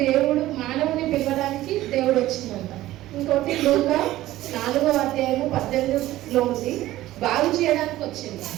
దేవుడు మానవుని పిలవడానికి దేవుడు వచ్చిందంట. ఇంకోటి లూకా 4:18 ఉంది, బాగు చేయడానికి వచ్చింది.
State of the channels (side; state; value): left; quieter; 15.5 dB